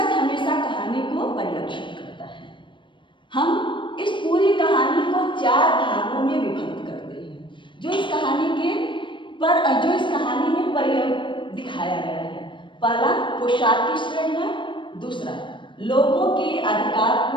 हमेशा कहानी को परिलक्षित करता है। हम इस पूरी कहानी को 4 भागों में विभक्त करते हैं, जो इस कहानी में दिखाया गया है। पहला पोशाक की श्रेणी है, दूसरा लोगों की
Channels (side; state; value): right; late; 0.24 ms